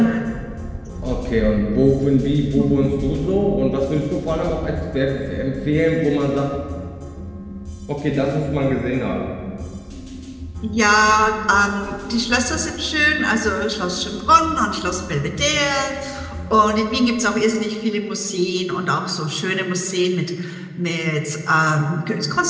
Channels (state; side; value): identical; both; correlation 1.00